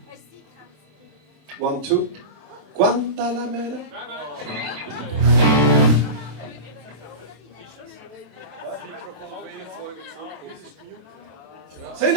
wow. 1, 2. Guantanamera. Sind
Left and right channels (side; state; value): left; late; 27 ms